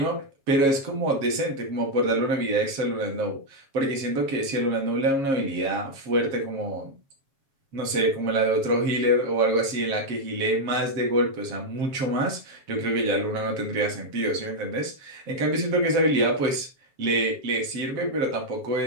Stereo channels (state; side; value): late; left; 7.3 ms